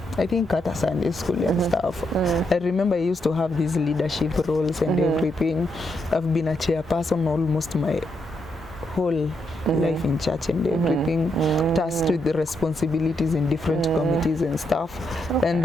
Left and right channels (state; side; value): normal; both; correlation 0.80